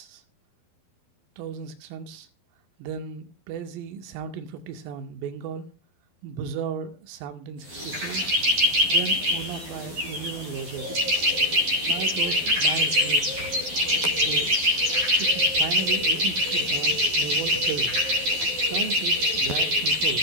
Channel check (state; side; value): late; left; 12 ms